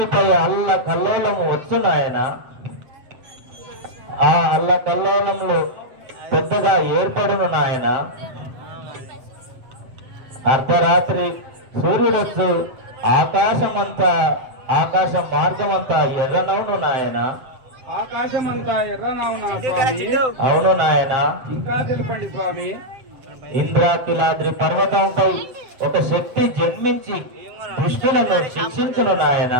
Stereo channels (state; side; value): late; left; 7.8 ms